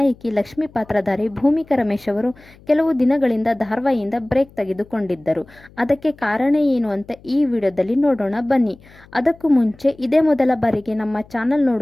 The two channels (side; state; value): left; noise; hum, 25 dB below the sound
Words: ಲಕ್ಷ್ಮೀ ಪಾತ್ರಧಾರಿ ಭೂಮಿಕಾ ರಮೇಶ್ ಅವರು ಕೆಲವು ದಿನಗಳಿಂದ ಧಾರಾವಾಹಿಯಿಂದ ಬ್ರೇಕ್ ತೆಗೆದುಕೊಂಡಿದ್ದರು. ಅದಕ್ಕೆ ಕಾರಣ ಏನು ಅಂತ ಈ ವಿಡಿಯೋದಲ್ಲಿ ನೋಡೋಣ ಬನ್ನಿ. ಅದಕ್ಕೂ ಮುಂಚೆ ಇದೇ ಮೊದಲ ಬಾರಿಗೆ ನಮ್ಮ ಚಾನಲ್